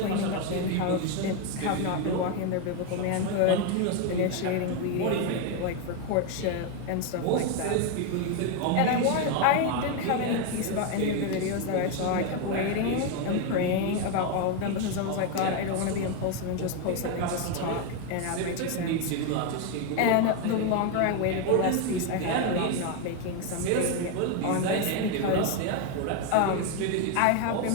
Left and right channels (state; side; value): different; both; correlation 0.02